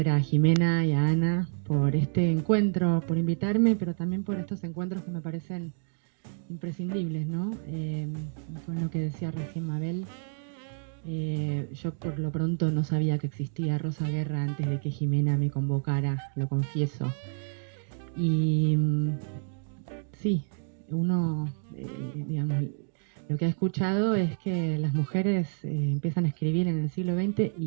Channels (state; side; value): silent; left; 59 dB below the other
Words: a Jimena y a Ana por este encuentro, por invitarme, pero también por estos encuentros que me parecen imprescindibles, ¿no? Con lo que decía recién Mabel, yo por lo pronto no sabía que existía Rosa Guerra antes de que Jimena me convocara, lo confieso. Y sí, uno, digamos, lo que ha escuchado es que las mujeres empiezan a escribir en el siglo XX